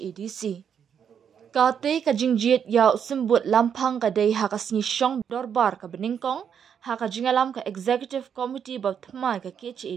Kate kajingjit ya sembut lampang kadai hakasni syong dorbar ke beningkong haka jingalam ke Executive Committee bab thmai ke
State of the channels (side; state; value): left; quieter; 7.9 dB